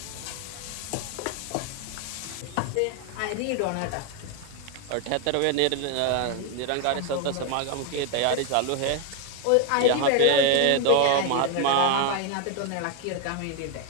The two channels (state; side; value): different; both; correlation 0.01